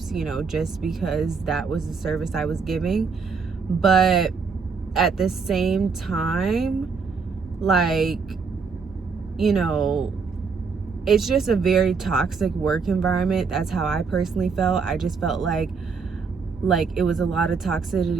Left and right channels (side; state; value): left; quieter; 5.2 dB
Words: you know, just because that was the service I was giving. But at the same time, like, you know, it's just a very toxic work environment. That's how I personally felt. I just felt like it was a lot of